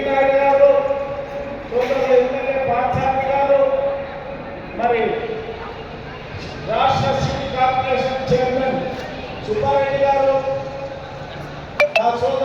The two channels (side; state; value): both; identical; correlation 1.00